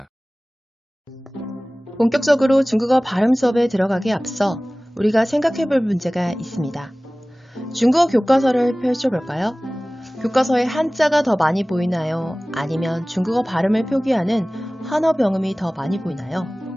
본격적으로 중국어 발음 수업에 들어가기에 앞서 우리가 생각해볼 문제가 있습니다. 중국어 교과서를 펼쳐볼까요? 교과서에 한자가 더 많이 보이나요? 아니면 중국어 발음을 표기하는 한어병음이 더 많이 보이나요?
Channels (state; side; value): normal; both; correlation 0.98